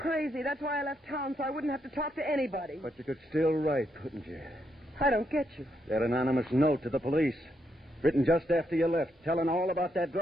That's why I left town, so I wouldn't have to talk to anybody. But you could still write, couldn't you? I don't get you. That anonymous note to the police, written just after you left, telling all about that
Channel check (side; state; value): both; normal; correlation 0.79